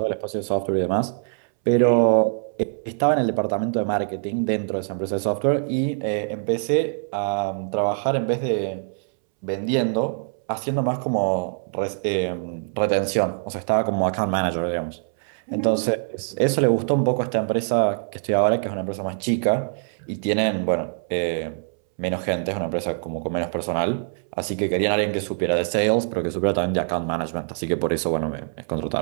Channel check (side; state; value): left; silent; 63 dB below the other